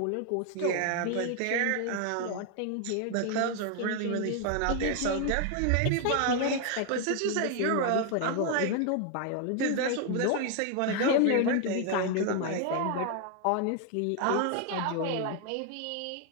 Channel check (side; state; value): both; different; correlation 0.00